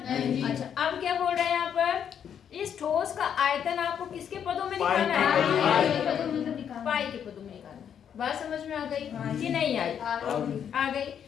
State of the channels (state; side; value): quieter; right; 8.5 dB